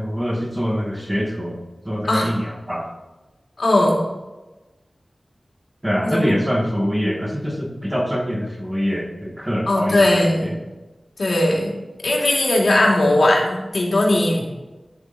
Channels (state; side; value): normal; both; correlation 0.97